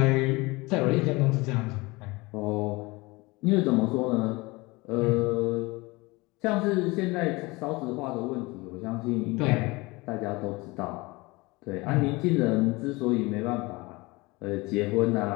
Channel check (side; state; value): right; quieter; 23.6 dB